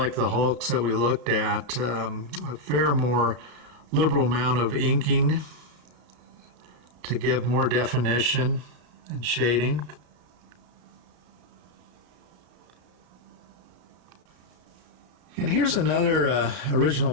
the Hulks that we looked at, a fair more liberal amount of inking to give more definition and shading. And here's another original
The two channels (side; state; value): left; late; 33 ms